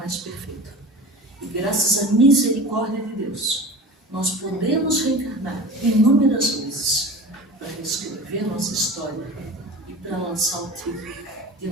perfeito. E graças à misericórdia de Deus, nós podemos reencarnar inúmeras vezes para reescrever nossa história e para lançar o título de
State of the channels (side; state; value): both; normal; correlation 0.35